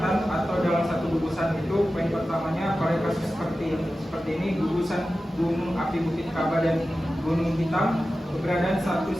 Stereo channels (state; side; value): normal; both; correlation 0.94